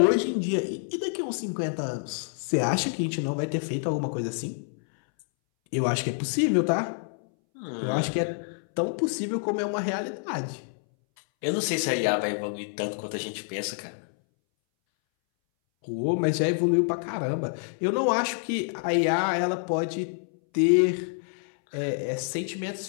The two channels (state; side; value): silent; right; 60 dB below the other